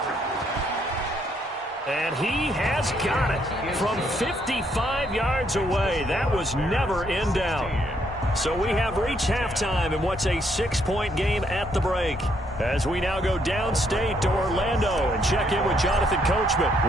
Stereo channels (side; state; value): both; normal; correlation 0.72